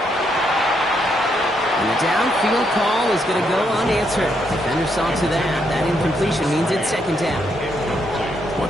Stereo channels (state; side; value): normal; both; correlation 0.76